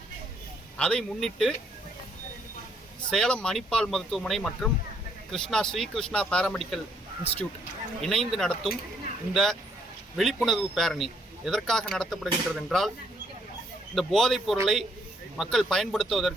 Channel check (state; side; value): normal; both; correlation 0.69